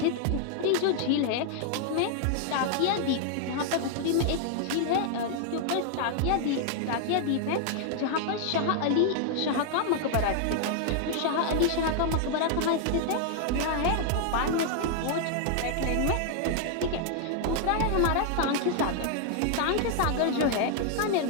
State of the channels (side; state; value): both; different; correlation 0.00